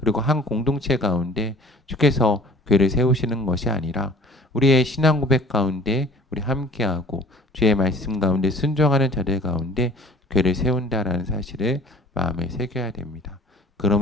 한 공동체 가운데 주께서 교회를 세우시는 것이 아니라 우리의 신앙 고백 가운데 우리 함께하고 주의 말씀 가운데 순종하는 자들 가운데 교회를 세운다라는 사실을 마음에 새겨야 됩니다.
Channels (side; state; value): both; normal; correlation 0.48